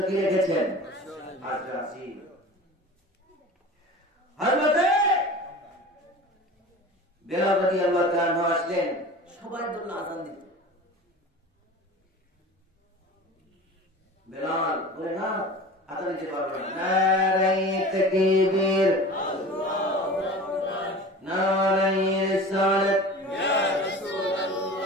কি রেখেছেন? আজকে আসিন। হযরতে বেলাল রাদিয়াল্লাহু তাআলা আসলেন, সবাই বলল আযান দিতে। বেলাল বলে না, আযান দিতে পারবে না। নারায়ে তাকবীর, আল্লাহু আকবার, নারায়ে রিসালাত, ইয়া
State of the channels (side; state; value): both; normal; correlation 0.37